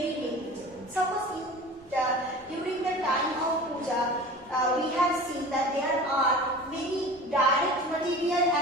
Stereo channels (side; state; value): both; normal; correlation 0.38